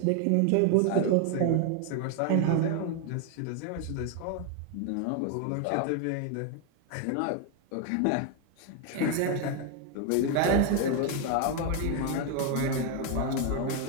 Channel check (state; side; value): different; both; correlation 0.01